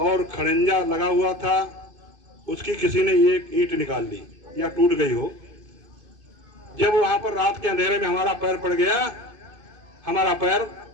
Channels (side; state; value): left; late; 2.5 ms